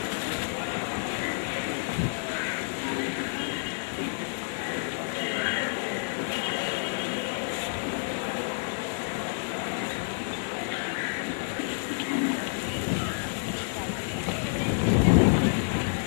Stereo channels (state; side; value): silent; right; digital silence